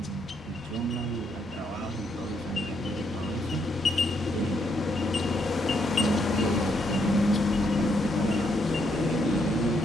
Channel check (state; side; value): normal; both; correlation 0.75